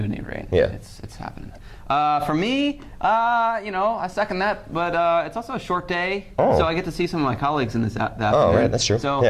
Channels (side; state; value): both; identical; correlation 1.00